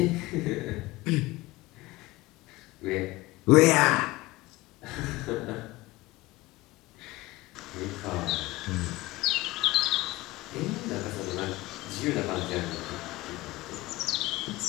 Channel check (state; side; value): quieter; right; 19.7 dB